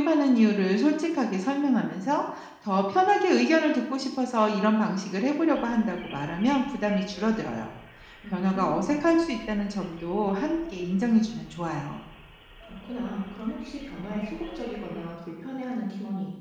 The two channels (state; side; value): identical; both; correlation 1.00